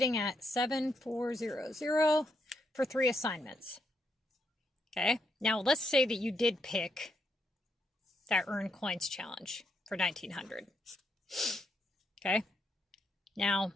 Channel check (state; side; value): normal; both; correlation 0.79